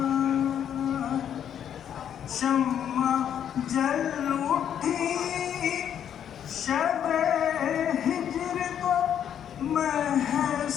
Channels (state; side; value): quieter; right; 9.3 dB